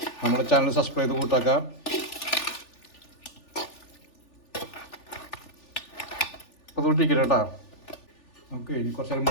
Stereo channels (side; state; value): right; late; 3.4 ms